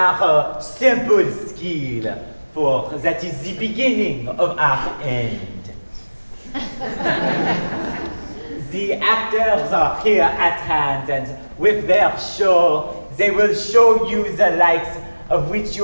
simple skill, for that is the beginning of our end. The actors are here at hand, and with their show, they will show you the likes of which you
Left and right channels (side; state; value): both; inverted; correlation -1.00